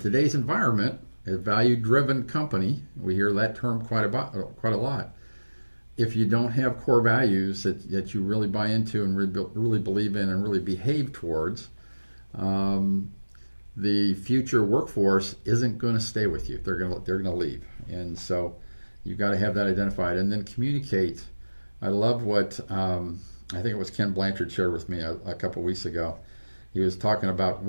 environment, a value-driven company, we hear that term quite a lot. If you don't have core values that you really buy into and really believe in and really behave towards, the future workforce isn't going to stay with you. They're going to leave. And so you've got to have that identified and then communicate. I love what I think it was Ken Blanchard shared with me a couple of weeks ago. He was talking about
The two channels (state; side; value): inverted; both; correlation -1.00